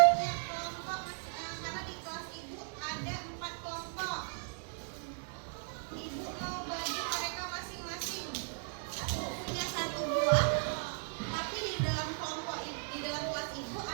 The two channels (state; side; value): silent; left; 54 dB below the other